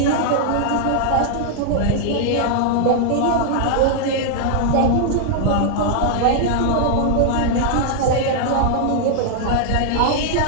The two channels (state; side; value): different; both; correlation -0.01